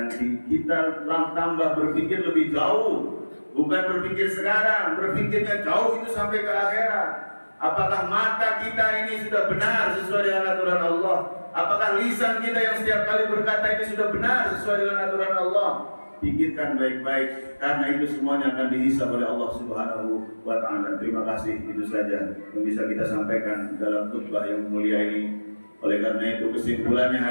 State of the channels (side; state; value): both; inverted; correlation -1.00